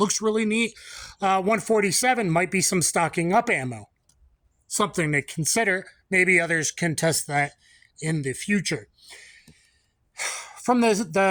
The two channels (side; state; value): both; identical; correlation 1.00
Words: really neat, 147 might be some stocking up ammo. Something to consider. Maybe others can test that in the future. From